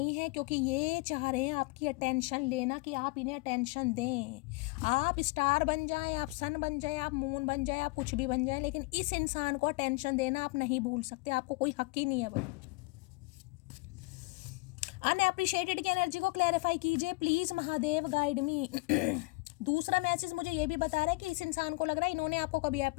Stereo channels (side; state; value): right; quieter; 24.5 dB